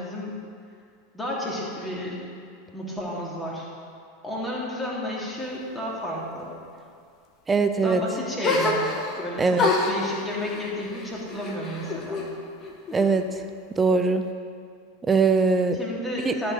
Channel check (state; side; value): normal; both; correlation 0.49